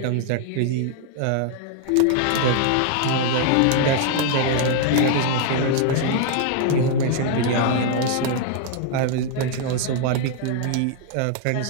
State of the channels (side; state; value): both; different; correlation 0.00